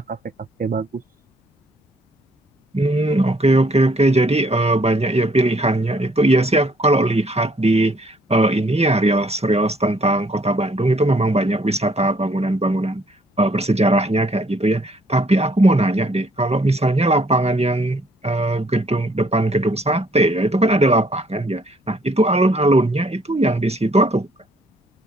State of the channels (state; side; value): normal; both; correlation 0.64